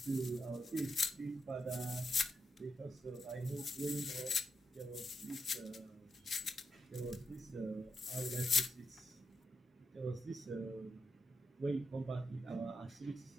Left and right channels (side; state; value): both; normal; correlation 0.83